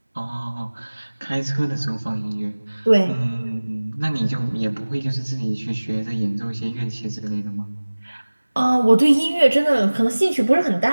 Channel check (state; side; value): inverted; both; correlation -1.00